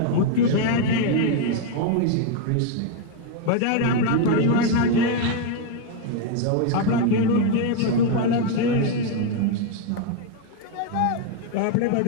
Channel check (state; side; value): different; both; correlation 0.01